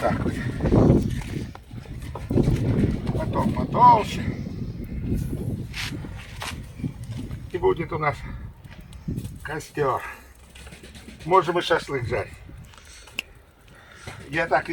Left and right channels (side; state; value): both; identical; correlation 1.00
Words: вот. Потом потолще. И будет у нас костер. Можем и шашлык жарить. Я так